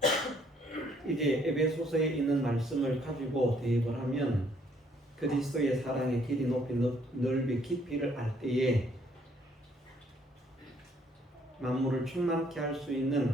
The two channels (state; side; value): normal; both; correlation 0.65